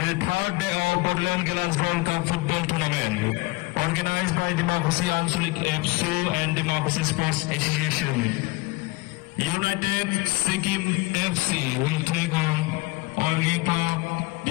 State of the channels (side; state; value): right; quieter; 22.8 dB